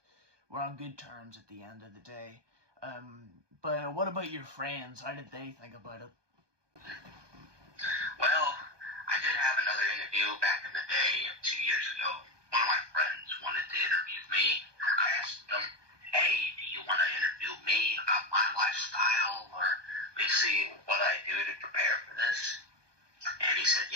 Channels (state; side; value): late; left; 1.2 ms